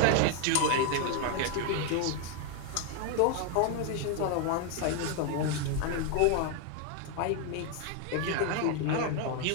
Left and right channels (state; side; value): different; both; correlation 0.01